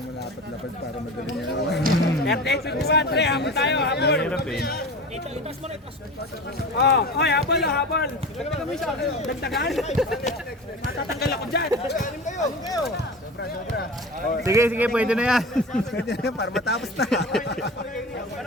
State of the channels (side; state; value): both; normal; correlation 0.32